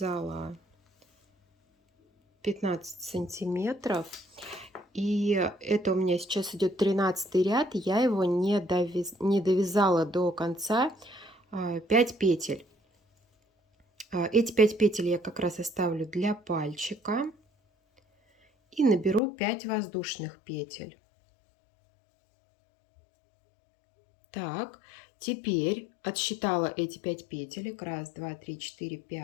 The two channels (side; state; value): right; drops out; at 19.2 s